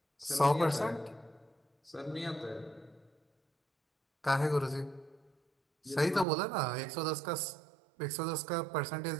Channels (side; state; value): left; drops out; at 6.2 s